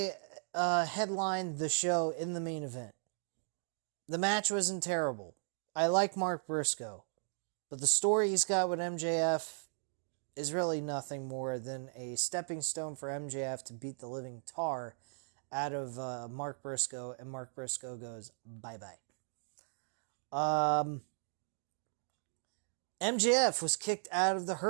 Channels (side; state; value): left; silent; digital silence